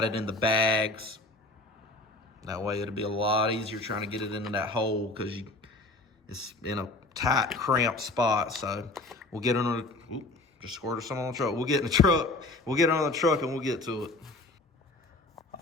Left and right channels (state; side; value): quieter; right; 3.0 dB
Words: it in the bags. That way it'll be a lot easier trying to get it into that hole because it's in a tight, cramped spot. So we'll get under the, just squirted some on the truck. We'll get in the truck. We'll get on the truck and we'll get to it.